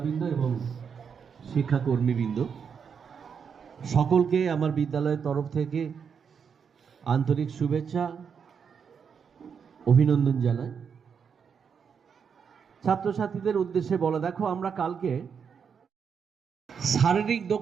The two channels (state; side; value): quieter; left; 6.7 dB